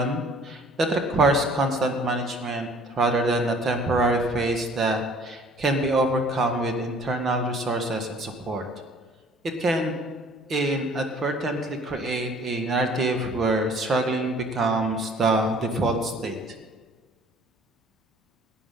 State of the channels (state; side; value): normal; both; correlation 0.53